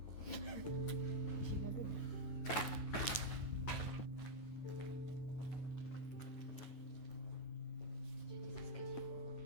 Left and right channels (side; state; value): right; late; 9.3 ms